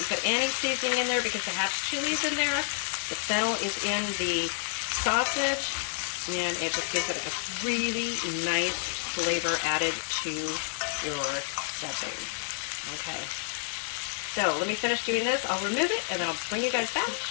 put any seasoning in there because I have chilies in there. The fennel is in the sausage, and it just gives it a really nice flavor added to your stuffing. Okay. So let me finish doing this. I'll remove it, and then I'll bring you guys back to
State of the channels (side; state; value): right; silent; digital silence